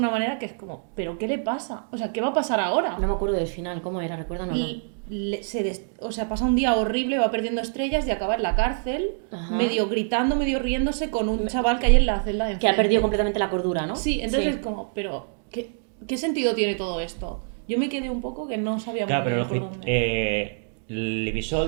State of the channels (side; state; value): left; silent; digital silence